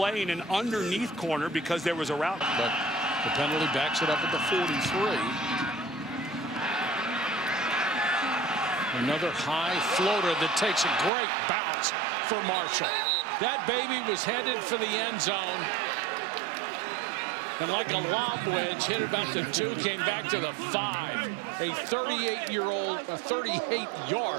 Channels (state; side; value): drops out; left; at 11.1 s